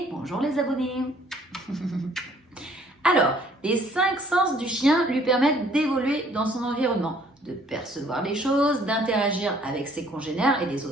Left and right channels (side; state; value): both; normal; correlation 0.60